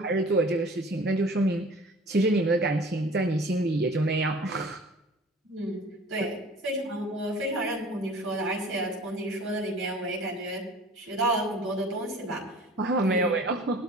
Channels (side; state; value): both; normal; correlation 0.45